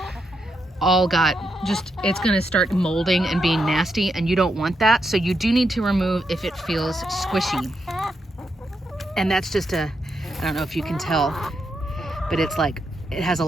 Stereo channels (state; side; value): normal; both; correlation 0.82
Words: all got it's going to start molding and being nasty, and you don't want that. So you do need to remove if it feels squishy. And that's just I don't know if you can tell, but it's like, it has a